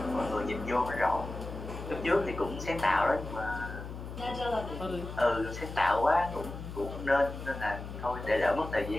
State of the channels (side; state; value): left; noise; hum, 9 dB below the sound